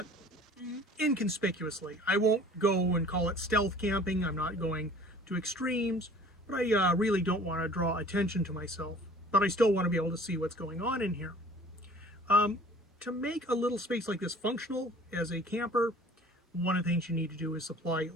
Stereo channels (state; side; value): normal; both; correlation 0.48